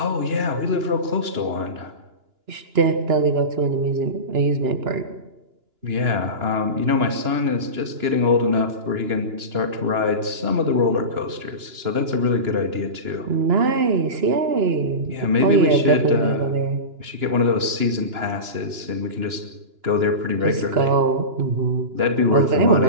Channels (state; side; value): late; left; 2.9 ms